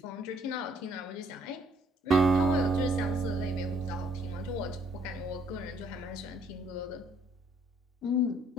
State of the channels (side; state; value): both; normal; correlation 0.65